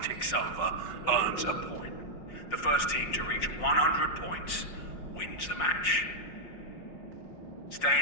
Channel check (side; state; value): right; late; 5.6 ms